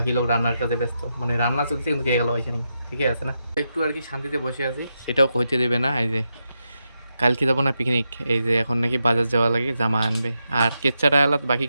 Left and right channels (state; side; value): inverted; both; correlation -0.85